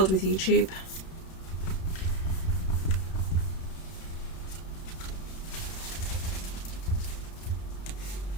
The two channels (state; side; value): late; right; 31 ms